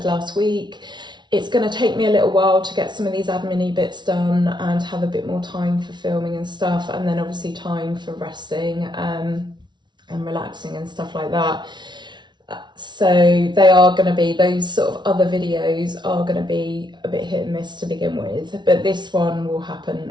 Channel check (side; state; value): left; late; 0.21 ms